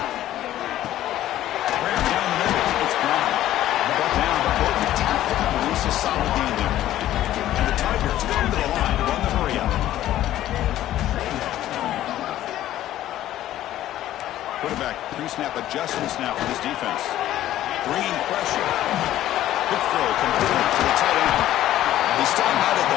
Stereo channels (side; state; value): right; quieter; 13.3 dB